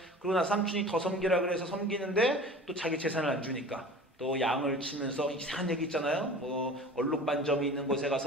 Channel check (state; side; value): normal; both; correlation 0.40